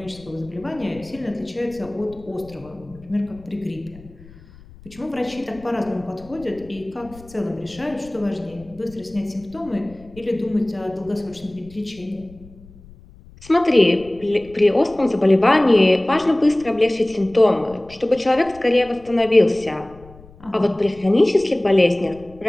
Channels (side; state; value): left; noise; rumble, 22 dB below the sound